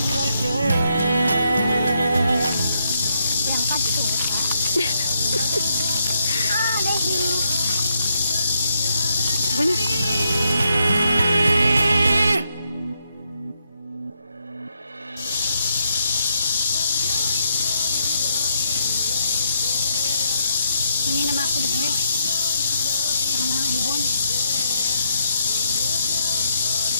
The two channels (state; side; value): inverted; both; correlation -0.77